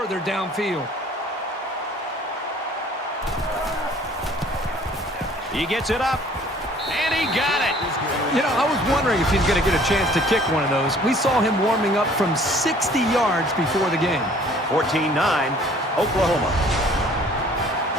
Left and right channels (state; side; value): normal; both; correlation 0.54